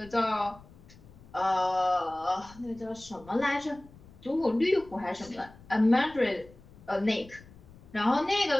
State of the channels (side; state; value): left; noise; rumble, 22 dB below the sound